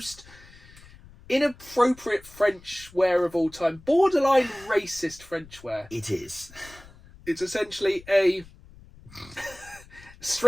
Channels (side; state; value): left; noise; rumble, 22 dB below the sound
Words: inappropriate French wear of all time. Borderline racist French wear. It is. It's essentially a